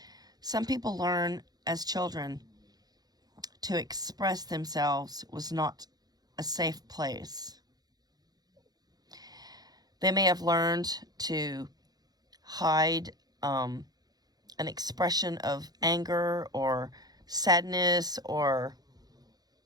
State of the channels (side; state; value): left; late; 0.19 ms